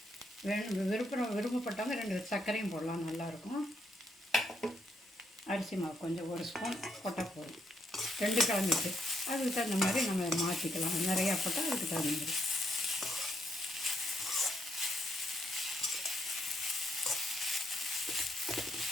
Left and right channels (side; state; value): both; normal; correlation 0.75